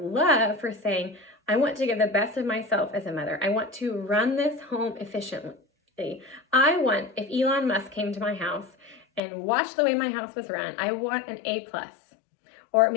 for saying, I want to give the best of myself as a mother. I want to run this home efficiently. I want, if Elon Musk came to my house and watched the way my house was run, I want an A+. Or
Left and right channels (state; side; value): drops out; right; at 9.2 s